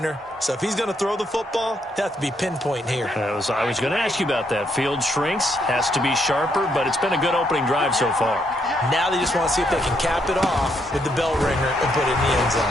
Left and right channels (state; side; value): normal; both; correlation 0.75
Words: So if he's going to throw the ball, it has to be pinpoint here. I was going to ask you about that. Field shrinks, has to be sharper, but it's been a good opening drive so far. Now they just want to see if they can cap it off with the bell ringer and put it in the end